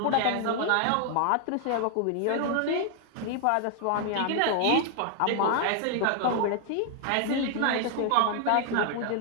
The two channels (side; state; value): both; different; correlation 0.00